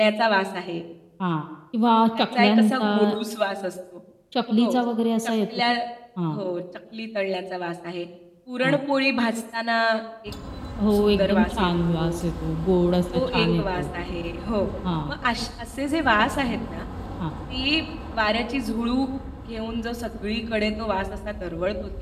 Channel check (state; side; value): identical; both; correlation 1.00